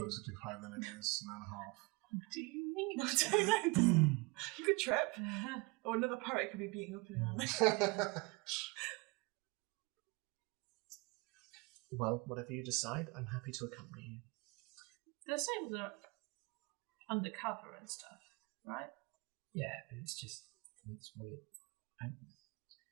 to 5 than it is an hour and a half. What do you mean? I don't know. You could trip. Or another pirate could be beating up in an alley. Well, whatever you decide, I'm happy to accompany you. The sables are undercover and stuff, right? Yeah, but it's weird.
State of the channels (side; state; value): left; quieter; 26.8 dB